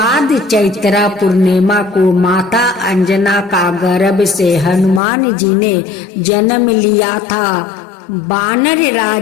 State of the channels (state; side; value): drops out; right; at 5.0 s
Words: चैत्र पूर्णिमा को माता अंजना का गर्भ से हनुमान जी ने जन्म लिया था। वानर